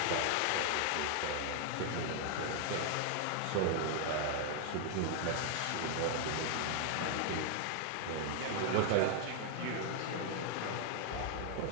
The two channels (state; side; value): different; both; correlation 0.00